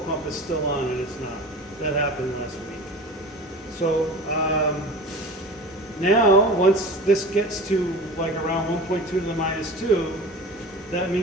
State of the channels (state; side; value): normal; both; correlation 0.37